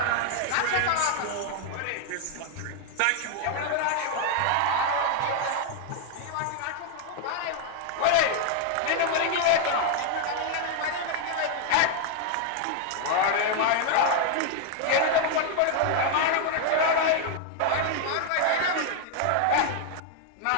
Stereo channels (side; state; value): both; different; correlation 0.00